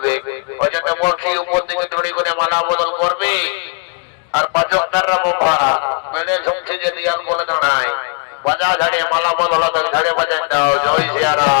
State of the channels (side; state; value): right; quieter; 35.3 dB